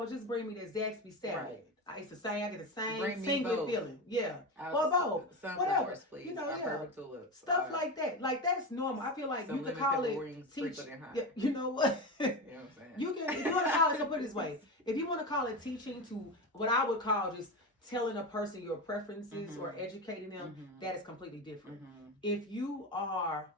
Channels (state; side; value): normal; both; correlation 0.21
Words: Just bring me the Zaxby salad. I used to say I get the same single feeling. Yeah. Well, both. Whatever. Please. You know, stuff like that. Like that's normal. I feel like you could call it teach. Yeah, you know what? You know what I'm saying? You can if you want to call it, so put it this way. If you want to call it teaching to what I would call just telling a person your preferences or educating them, that is completely different. If you are